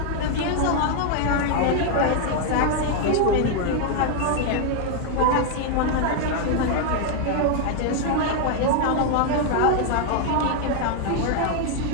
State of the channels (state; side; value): different; both; correlation 0.00